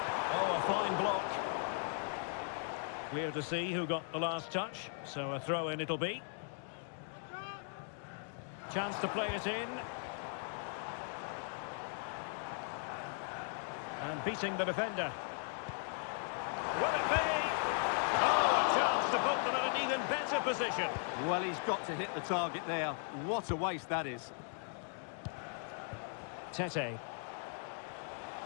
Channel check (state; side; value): silent; right; 52 dB below the other